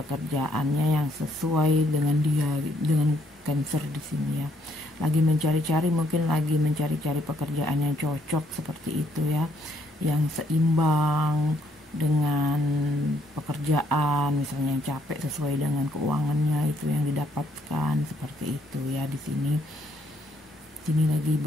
yang sesuai dengan dia, dengan Cancer di sini ya. Lagi mencari-cari, mungkin lagi mencari-cari pekerjaan yang cocok seperti itu ya, yang seimbang dengan pekerjaan, misalnya yang capek sesuai dengan keuangannya itu yang didapatkan seperti itu ya. Di sini lagi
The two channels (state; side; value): normal; both; correlation 0.70